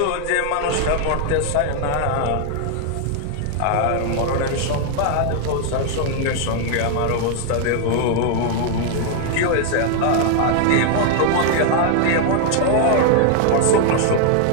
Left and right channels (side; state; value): both; different; correlation 0.00